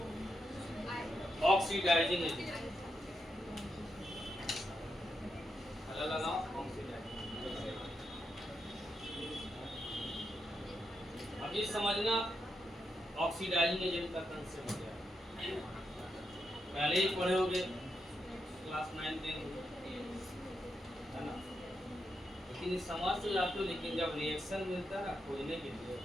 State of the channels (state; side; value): normal; both; correlation 0.84